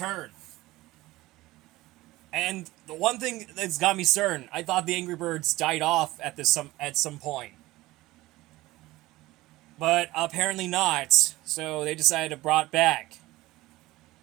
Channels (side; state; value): left; quieter; 18.4 dB